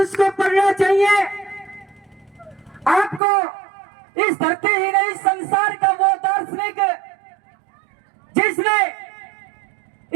को पढ़ना चाहिए। आपको इस धरती ही नहीं, संसार का वो दार्शनिक जिसने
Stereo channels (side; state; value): left; drops out; at 3.2 s